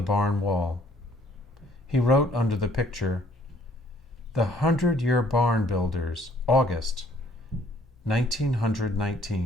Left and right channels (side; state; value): both; normal; correlation 0.62